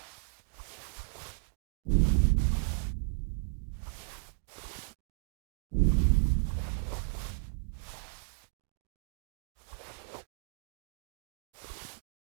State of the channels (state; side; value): silent; left; digital silence